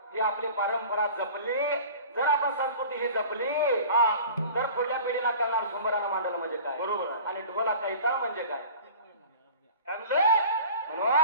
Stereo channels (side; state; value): both; inverted; correlation -0.41